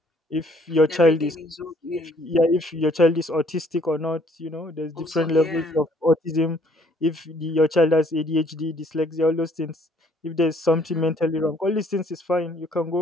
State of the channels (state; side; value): normal; both; correlation 0.62